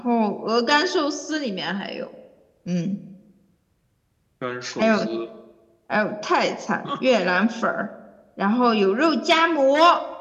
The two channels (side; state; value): both; identical; correlation 1.00